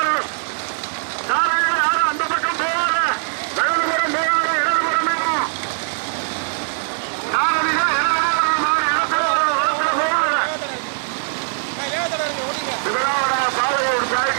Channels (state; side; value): silent; left; digital silence